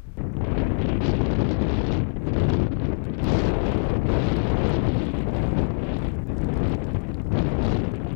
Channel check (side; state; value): right; silent; digital silence